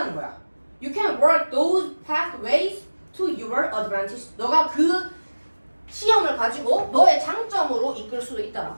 거야. You can work those pathways to your advantage 너가 그 시험을 가지고 너의 장점으로 이끌 수도 있다라고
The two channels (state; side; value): inverted; both; correlation -1.00